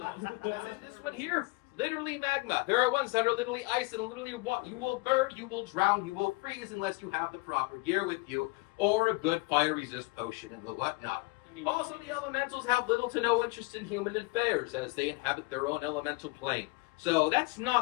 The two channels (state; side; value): quieter; right; 26.8 dB